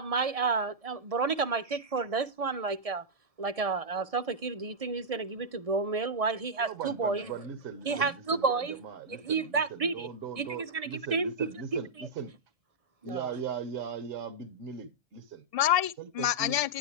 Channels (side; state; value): left; late; 1.7 ms